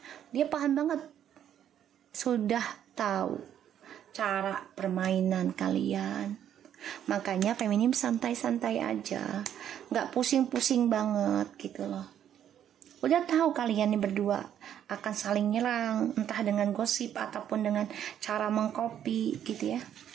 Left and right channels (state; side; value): quieter; left; 10.0 dB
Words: Dia paham banget, sudah tahu cara permainan kalian. Makanya feminim santai-santai aja, nggak pusing-pusing banget gitu loh. Udah tahu kalian nih berdua akan saling nyerang, entah dengan gosip ataupun dengan cara mengcopy gitu ya.